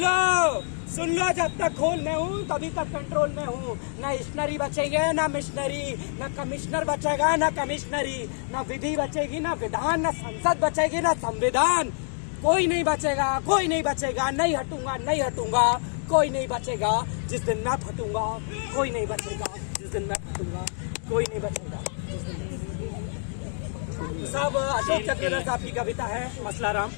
लो, जब तक खोल में हूँ तभी तक कंट्रोल में हूँ। न स्टेशनरी बचेंगे, न मिशनरी, न कमिश्नर बचेगा, न कमिश्नरी, न विधि बचेगी, न विधान, न संसद बचेगी, न संविधान। कोई नहीं बचेगा। नहीं हटूंगा। कोई नहीं बचेगा जिस दिन मैं फटूंगा। कोई नहीं बचेगा जिस दिन मैं फटूंगा। कोई नहीं बचेगा जिस दिन। सब अशोक चक्रवर्ती साहब की कविता है, मसलाराम।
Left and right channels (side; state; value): right; silent; 58 dB below the other